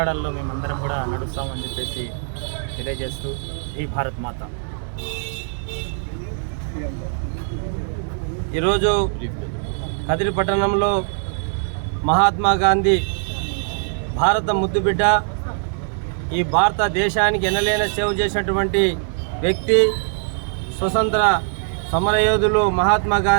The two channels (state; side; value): silent; left; 63 dB below the other